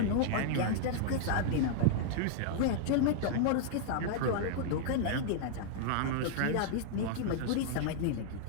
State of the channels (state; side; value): different; both; correlation -0.01